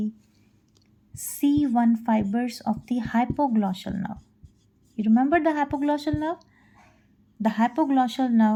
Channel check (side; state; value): both; identical; correlation 1.00